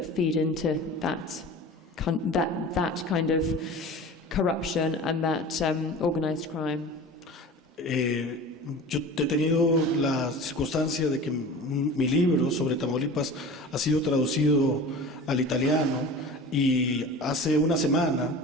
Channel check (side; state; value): both; normal; correlation 0.37